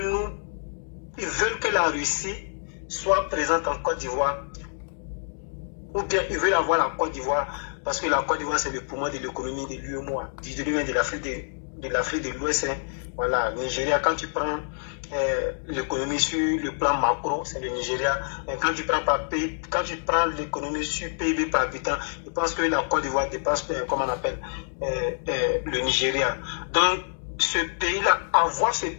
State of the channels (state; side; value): silent; right; digital silence